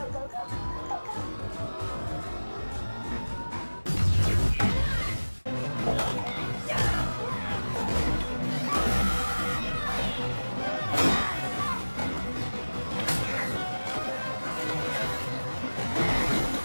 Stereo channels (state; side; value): inverted; both; correlation -1.00